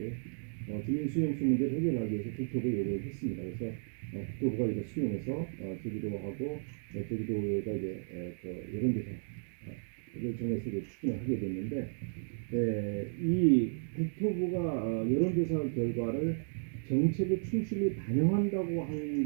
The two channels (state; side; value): silent; left; digital silence